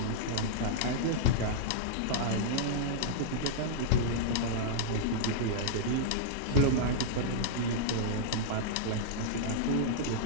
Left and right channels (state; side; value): different; both; correlation -0.02